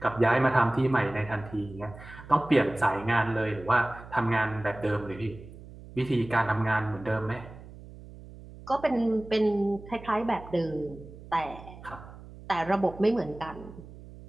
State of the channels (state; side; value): noise; right; hum, 17 dB below the sound